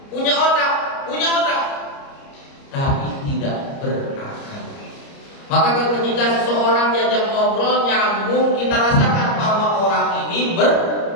punya otak, tapi tidak berakal. Maka ketika seseorang diajak ngobrol nyambung, kita rasakan bahwa orang ini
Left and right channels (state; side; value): late; right; 30 ms